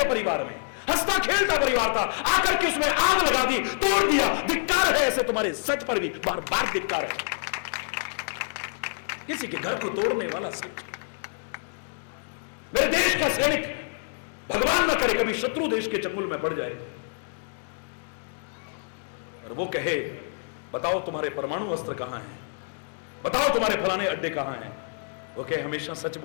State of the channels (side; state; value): right; silent; digital silence